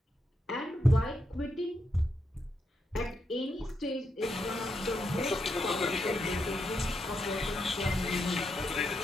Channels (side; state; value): both; normal; correlation 0.82